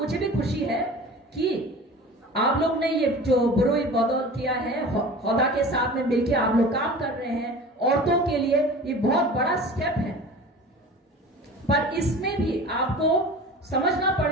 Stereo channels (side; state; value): both; normal; correlation 0.38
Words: भी खुशी है कि आप लोग ने ये जो बुरुई बदौल किया है, हौदा के साथ में मिलकर आप लोग काम कर रहे हैं औरतों के लिए, ये बहुत बड़ा स्टेप है। पर इसमें भी आपको समझना